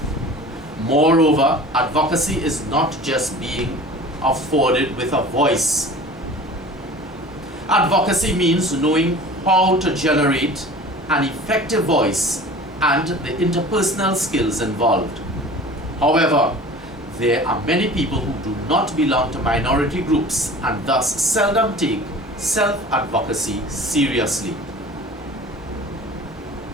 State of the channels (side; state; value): both; normal; correlation 0.41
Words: Moreover, advocacy is not just being afforded with a voice. Advocacy means knowing how to generate an effective voice and the interpersonal skills involved. However, there are many people who do not belong to minority groups and thus seldom take self-advocacy seriously.